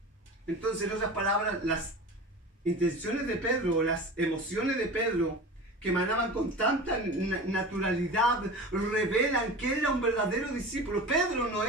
Entonces, en otras palabras, las intenciones de Pedro, las emociones de Pedro, que emanaban con tanta naturalidad, revelan que era un verdadero discípulo. Pedro no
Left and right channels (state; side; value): normal; both; correlation 0.33